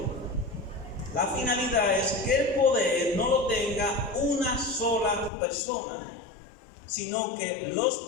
La finalidad es que el poder no lo tenga una sola persona, sino que los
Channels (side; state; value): right; drops out; at 5.3 s